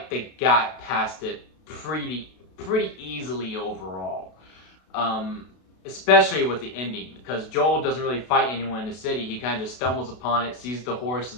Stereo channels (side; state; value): right; late; 32 ms